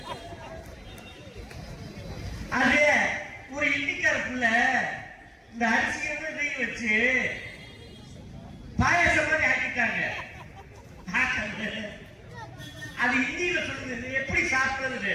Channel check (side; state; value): both; identical; correlation 1.00